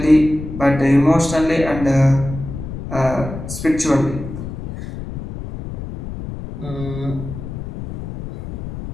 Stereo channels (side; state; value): left; noise; rumble, 9 dB below the sound